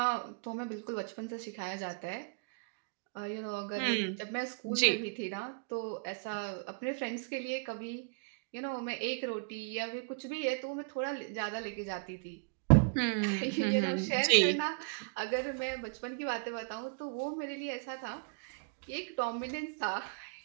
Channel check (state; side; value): quieter; left; 35.8 dB